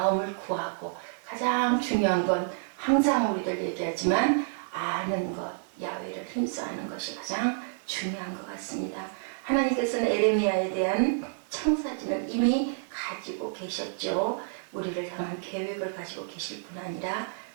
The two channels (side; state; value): left; silent; digital silence